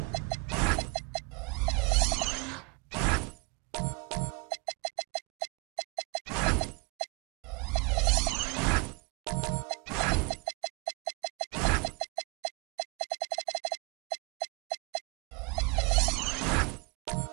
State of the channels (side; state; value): left; quieter; 30.5 dB